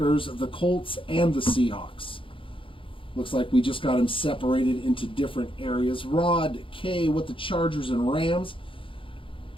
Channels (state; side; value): late; right; 0.25 ms